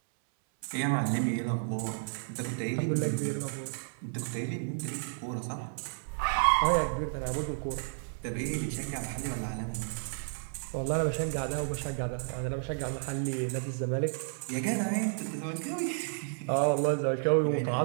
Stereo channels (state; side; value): silent; left; 57 dB below the other